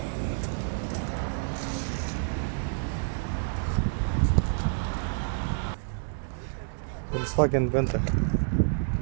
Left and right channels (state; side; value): silent; left; digital silence